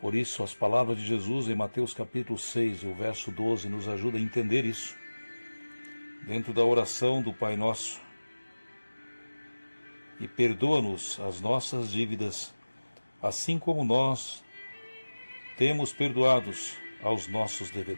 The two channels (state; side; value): inverted; both; correlation -1.00